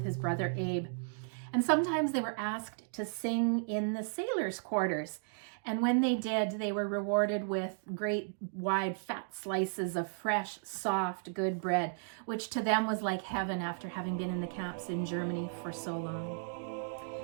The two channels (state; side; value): silent; left; digital silence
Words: his brother Abe. And sometimes they were asked to sing in the sailors' quarters. And when they did, they were rewarded with great, wide, fat slices of fresh, soft, good bread, which to them was like heaven after having been in the camps in Germany for so